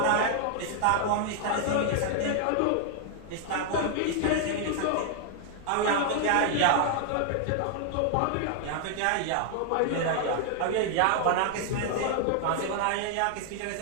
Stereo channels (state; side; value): different; both; correlation 0.00